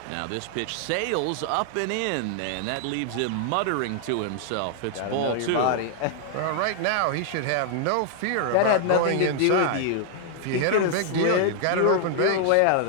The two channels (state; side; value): different; both; correlation 0.00